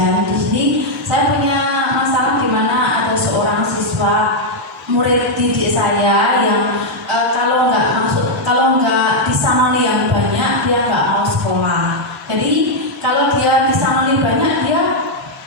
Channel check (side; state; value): both; normal; correlation -0.01